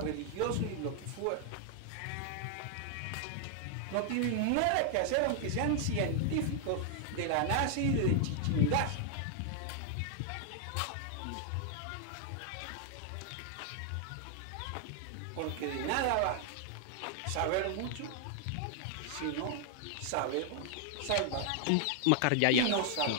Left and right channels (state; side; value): different; both; correlation 0.00